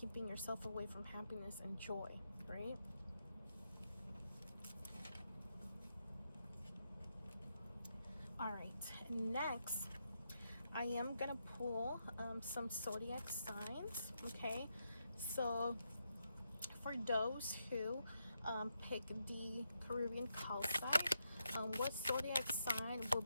yourself away from happiness and joy, right? All right, next I am gonna pull some zodiac signs. Okay, so for those who pick the Caribbean Calcite, what zodiac sign will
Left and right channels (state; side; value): inverted; both; correlation -0.83